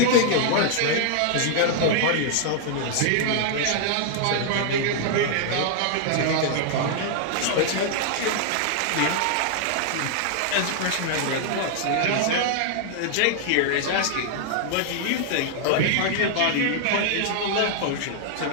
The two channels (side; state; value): both; different; correlation 0.00